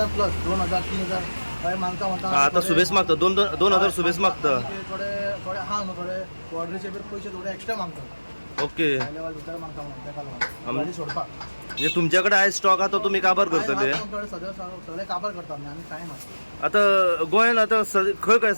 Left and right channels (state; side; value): inverted; both; correlation -1.00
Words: प्लस 2000 3000 हय मागता म्हणटा. आतां सुबेज मागता 2,000 सुबेज मागता. थोडे थोडे आहा न्हू थोडे बॉर्डरीचे बी पयशे थोडे एक्स्ट्रा मागता. ओके. हाय लेवल भितर मागता म्हणून ताका लागून गाडी सोडपाक. म्हणजे तुमच्या कडेन आयज स्टॉक आहा तो तुमी काबार करतले? सगळे काबार करता आमी कांय ना. आतां गोंयान आतां खंय खंय